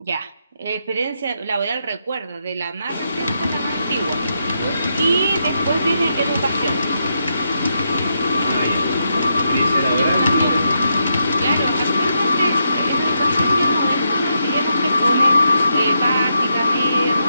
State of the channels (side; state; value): both; inverted; correlation -0.81